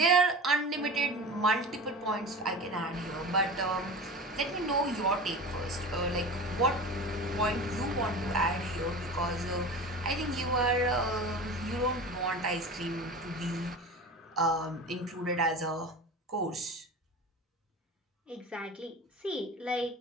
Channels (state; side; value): normal; both; correlation 0.32